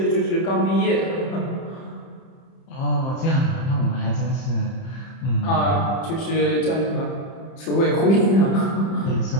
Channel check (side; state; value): right; late; 30 ms